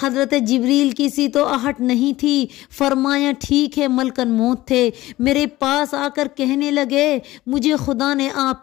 حضرت جبریل کی سی تو آہٹ نہیں تھی۔ فرمایا، ٹھیک ہے، ملکن موت تھے۔ میرے پاس آ کر کہنے لگے، مجھے خدا نے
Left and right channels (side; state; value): right; quieter; 17.1 dB